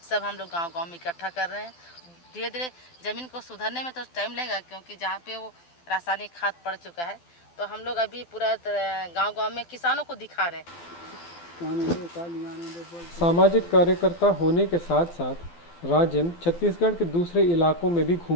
सब हम लोग गांव-गांव में इकट्ठा कर रहे हैं। धीरे धीरे ज़मीन को सुधारने में तो टाइम लगेगा, क्योंकि जहाँ पे वो रासायनिक खाद पड़ चुका है, तो हम लोग अभी पूरा गांव-गांव में किसानों को दिखा रहे हैं। सामाजिक कार्यकर्ता होने के साथ साथ राजिम छत्तीसगढ़ के दूसरे इलाकों में भी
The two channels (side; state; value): right; late; 12 ms